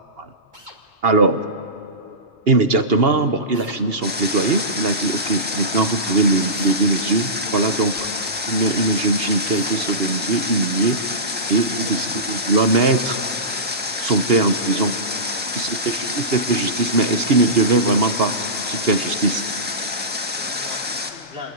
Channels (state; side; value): normal; both; correlation -0.19